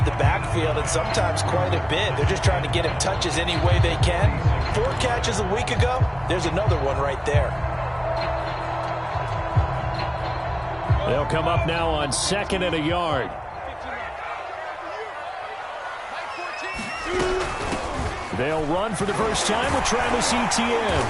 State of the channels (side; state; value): both; identical; correlation 1.00